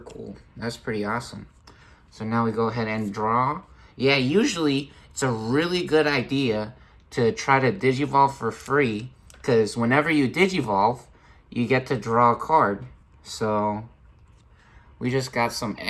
That's pretty awesome. So now we go ahead and draw. Yeah, usually it's a really good idea to try to Digivolve for free, because whenever you Digivolve, you get to draw a card. So we just got some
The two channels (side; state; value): both; identical; correlation 1.00